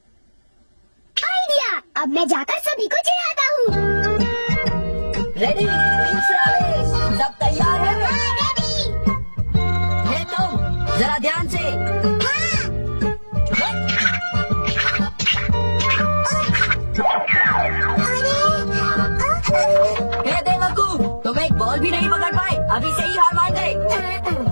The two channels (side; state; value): both; inverted; correlation -1.00